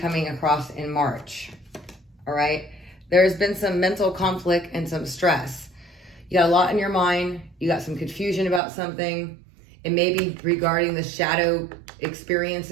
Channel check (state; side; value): drops out; left; at 8.6 s